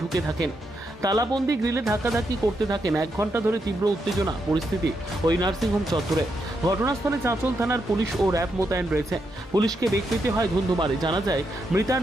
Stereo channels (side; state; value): both; normal; correlation 0.82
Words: ঢুকে থাকেন। তালাবন্দি গ্রিলে ধাক্কাধাক্কি করতে থাকেন। 1 ঘন্টা ধরে তীব্র উত্তেজনা পরিস্থিতি ওই নার্সিংহোম চত্বরে। ঘটনাস্থলে চাঁচল থানার পুলিশ ও র্যাব মোতায়েন রয়েছে। পুলিশকে বেগ পেতে হয় ধুন্ধুমারে। জানা যায় মৃতার